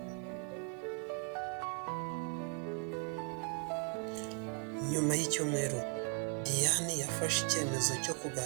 Nyuma y'icyumweru, Diane yafashe icyemezo cyo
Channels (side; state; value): left; quieter; 37.4 dB